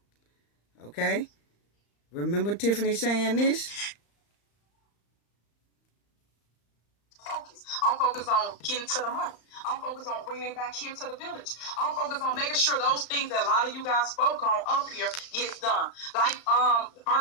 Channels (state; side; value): late; right; 35 ms